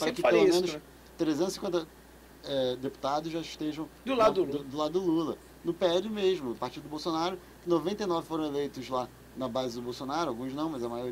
pelo menos 350 deputados já estejam do lado do Lula. No PL mesmo, o partido do Bolsonaro, 99 foram eleitos lá na base do Bolsonaro, alguns não, mas a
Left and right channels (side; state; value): both; identical; correlation 1.00